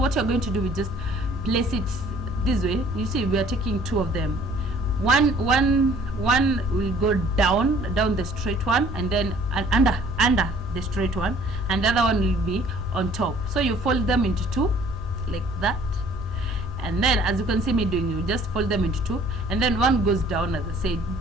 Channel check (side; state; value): both; normal; correlation 0.55